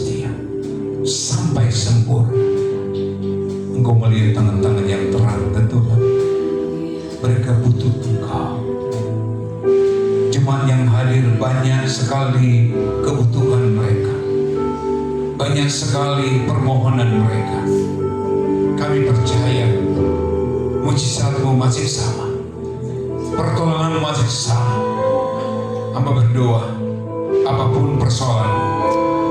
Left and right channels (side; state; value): both; identical; correlation 1.00